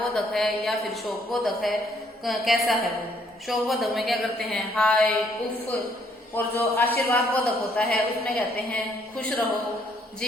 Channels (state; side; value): normal; both; correlation 0.67